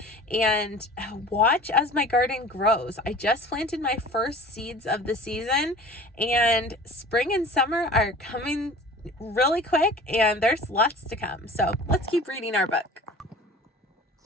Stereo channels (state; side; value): normal; both; correlation 0.42